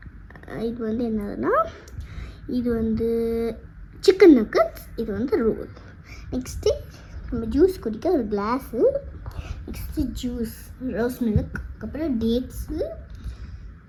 இது வந்து என்னதுன்னா, இது வந்து சிக்கன் நக்கட்ஸ், இது வந்து ரோல். நெக்ஸ்ட்டு நம்ம ஜூஸ் குடிக்க ஒரு class, next juice rose milk, அதுக்கப்புறம் டேட்ஸு,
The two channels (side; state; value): both; identical; correlation 1.00